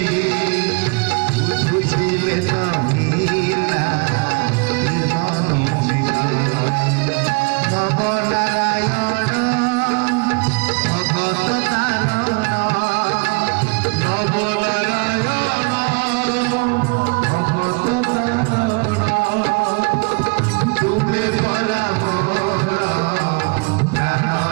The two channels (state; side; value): quieter; left; 31.5 dB